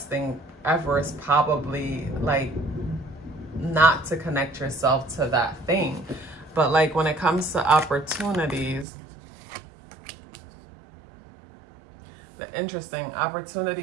thing ever is probably like not to connect yourself to that thing. But like when it comes to opportunities, interesting.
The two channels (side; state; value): left; drops out; at 8.8 s